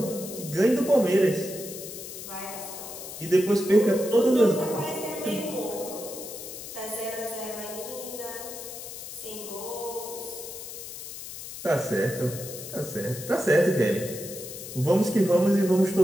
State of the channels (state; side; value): noise; left; hiss, 10 dB below the sound